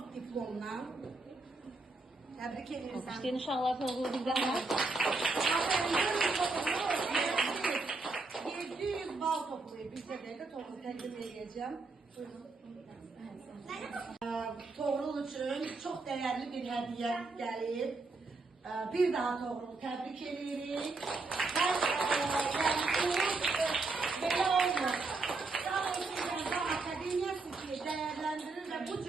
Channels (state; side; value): quieter; left; 3.6 dB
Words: diplomla. Təbrik edirik. İşte inşallah Toğrul bizdən var. 700 bal toplayıb bir dəqiqə Toğrul təqdim edəcəm. Toğrul üçün çox dəyərli bir hədiyyə gəlib. Bir daha Toğrul təbrik edirik. Belə olmur. Akademiyası ki, dəyərləndirir və bu